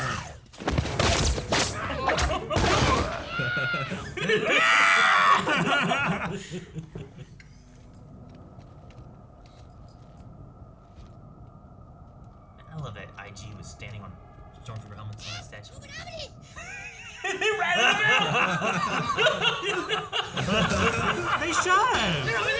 I love that IG was standing on Stormtrooper helmets on that statue. They shot him. They're over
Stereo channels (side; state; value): both; identical; correlation 1.00